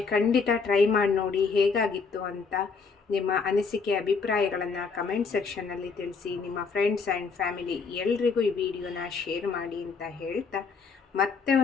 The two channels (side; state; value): right; quieter; 5.0 dB